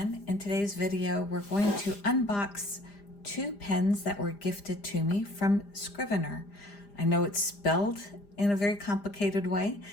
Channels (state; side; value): late; right; 5.0 ms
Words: in today's video we're going to unbox two pens that were gifted to me from Scriveiner. I know it's spelled in a very complicated way,